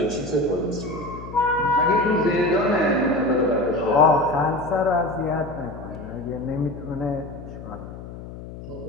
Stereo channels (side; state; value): left; noise; hum, 13 dB below the sound